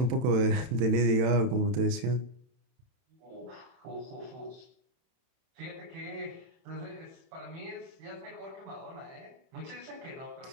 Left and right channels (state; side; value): late; left; 31 ms